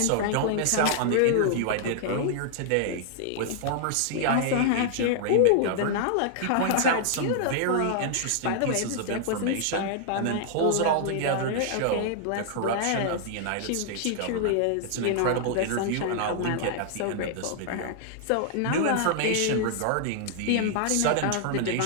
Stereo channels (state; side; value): different; both; correlation -0.01